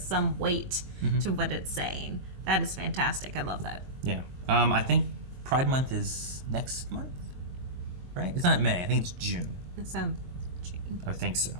weight to what it's saying. That is fantastic. I love that. Yeah. I think Pride Month is next month, right? It's not May. I think it's June. It sounds. I think so.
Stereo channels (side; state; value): left; late; 22 ms